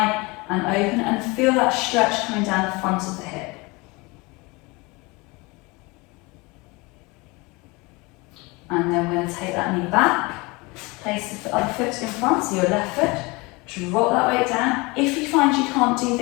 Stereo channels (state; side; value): quieter; right; 25.4 dB